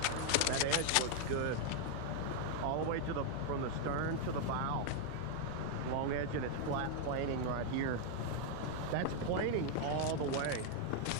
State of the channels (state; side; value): different; both; correlation 0.00